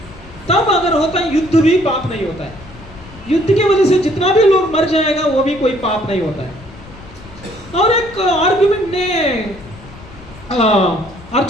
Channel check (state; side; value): noise; left; rumble, 19 dB below the sound